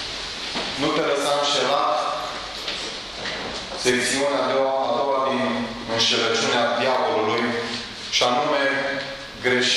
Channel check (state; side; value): identical; both; correlation 1.00